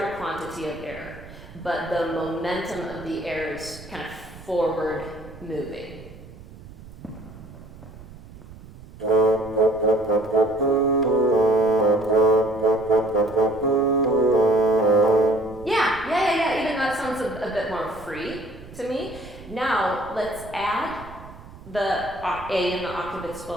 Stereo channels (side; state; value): right; noise; rumble, 18 dB below the sound